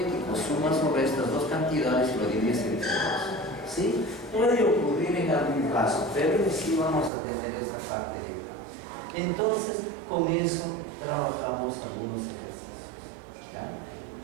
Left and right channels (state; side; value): drops out; left; at 7.1 s